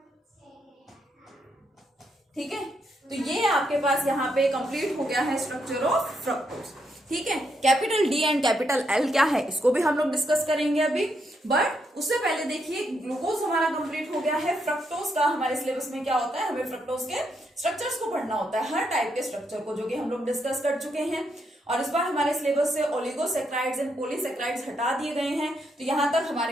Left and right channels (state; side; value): normal; both; correlation 0.78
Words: ठीक है। तो ये आपके पास यहाँ पे कंप्लीट हो गया है स्ट्रक्चर ऑफ फ्रक्टोज, ठीक है। Capital D and capital L क्या है इसको भी हम लोग डिस्कस करेंगे अभी, बट उससे पहले देखिए ग्लूकोज हमारा कंप्लीट हो गया है। फ्रक्टोज का हमारे सिलेबस में क्या होता है, हमें फ्रक्टोज के स्ट्रक्चर्स को पढ़ना होता है, हर टाइप के स्ट्रक्चर को, जो कि हम लोग डिस्कस कर चुके हैं। और इस बार हमारे सिलेबस से ओलिगोसेक्राइड्स एंड पॉलीसेक्राइड्स हटा दिए गए हैं, तो यहां तक हमारे